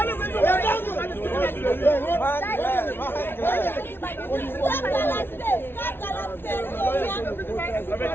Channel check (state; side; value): late; right; 0.11 ms